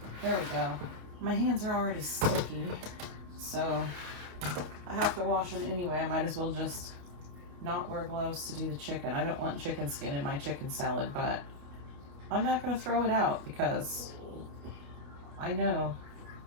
There we go. My hands are already sticky, so I have to wash them anyway. I might as well just not wear gloves to do the chicken. I don't want chicken skin in my chicken salad, but I'm not going to throw it out because I know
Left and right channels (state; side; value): late; left; 28 ms